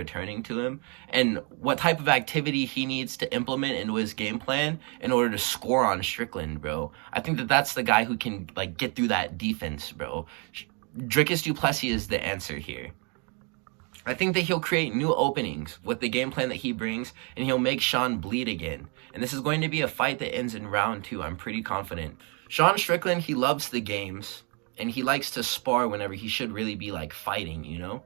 to him, and what type of activity he needs to implement into his game plan in order to score on Strickland, bro. I think that that's the guy who can, like, get through that defense, bro. Dricus du Plessis is the answer here. I think that he'll create new openings with the game plan that he brings, and he'll make Sean bleed again. And this is going to be a fight that ends in round 2. I'm pretty confident. Sean Strickland, he loves the games, and he likes to spar whenever he should really be, like, fighting, you know?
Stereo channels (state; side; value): quieter; left; 34.6 dB